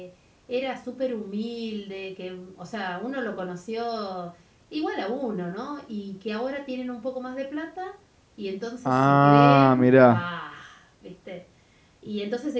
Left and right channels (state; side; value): identical; both; correlation 1.00